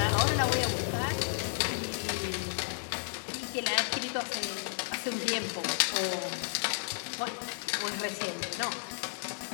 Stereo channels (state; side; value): silent; right; digital silence